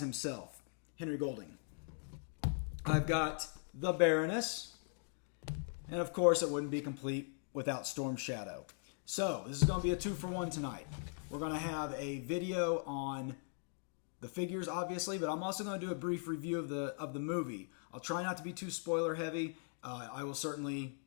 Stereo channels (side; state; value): right; silent; 51 dB below the other